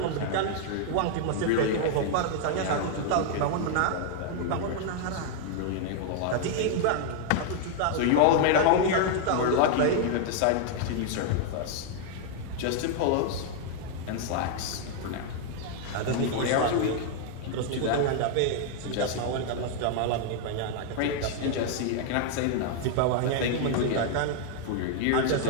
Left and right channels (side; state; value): both; different; correlation 0.00